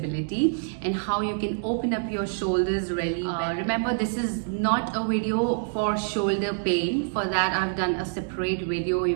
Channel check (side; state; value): left; silent; 61 dB below the other